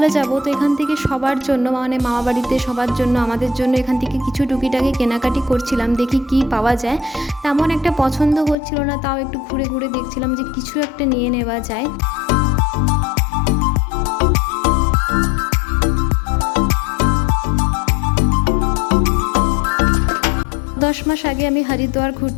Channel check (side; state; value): right; drops out; at 8.6 s